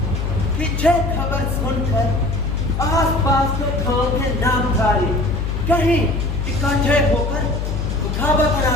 पीछे खबर सुनकर आसपास के गांव के नामधारी कहीं इकट्ठे होकर मुखाबत ना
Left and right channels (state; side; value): noise; left; hum, 2 dB below the sound